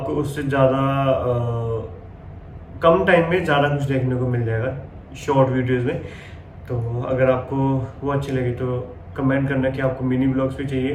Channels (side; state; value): both; identical; correlation 1.00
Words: उससे ज़्यादा कम टाइम में ज़्यादा कुछ देखने को मिल जाएगा शॉर्ट वीडियोज़ में। तो अगर आपको वो अच्छी लगी तो कमेंट करना कि आपको मिनी ब्लॉग्स भी चाहिए